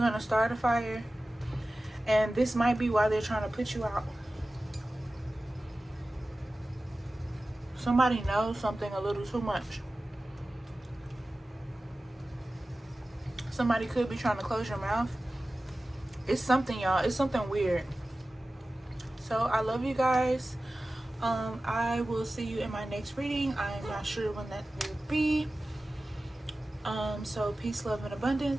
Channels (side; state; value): both; normal; correlation 0.96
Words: to start a fire. And this might be why they're trying to put you out. Somebody knows something a little too much. Somebody could be trying to close your mouth. It's something, y'all. It's something weird. So I love you guys. I will see you in my next reading. I'm not sure when that will be. So peace, love, and